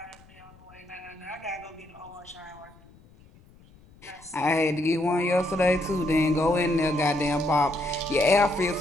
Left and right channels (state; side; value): noise; left; rumble, 26 dB below the sound